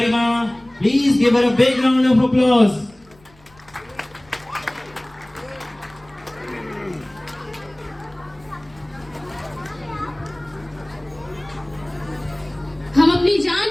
Please give her a big round of applause. हम अपनी जान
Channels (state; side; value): noise; left; rumble, 29 dB below the sound